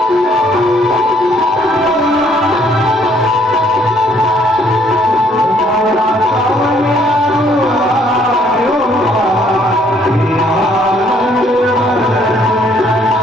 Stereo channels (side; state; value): both; normal; correlation 0.65